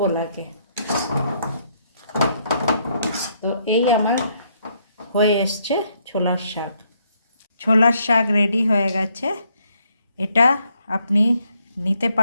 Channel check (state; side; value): inverted; both; correlation -0.72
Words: লাগে। তো এই আমার হয়ে এসছে ছোলার শাক। ছোলার শাক রেডি হয়ে গেছে। এটা আপনি নিতে